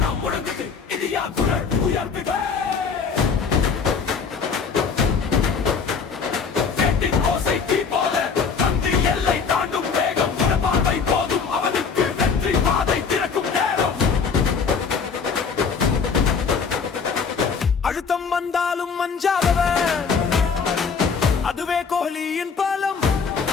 முழங்குது இந்தியா குரல் உயர்த்துக ஓசை தீ போல தந்தி எல்லை தாண்டும் வேகம் பார்வை போதும் அவனுக்கு வெற்றி பாதை திறக்கும் நேரம் அழுத்தம் வந்தாலும் மஞ்சாதவன் அதுவே கோஹ்லியின் பலம்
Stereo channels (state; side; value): quieter; right; 5.7 dB